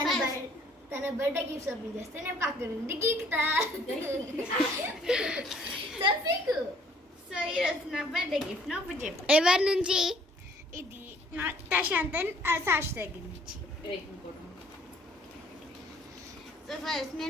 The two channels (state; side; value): normal; both; correlation 0.59